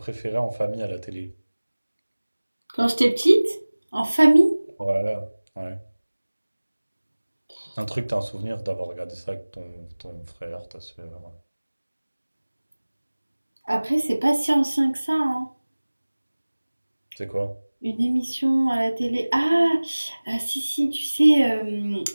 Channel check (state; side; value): inverted; both; correlation -1.00